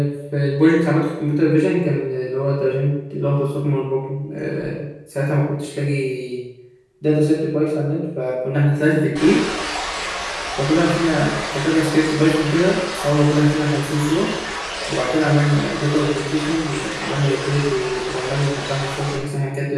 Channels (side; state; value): both; identical; correlation 1.00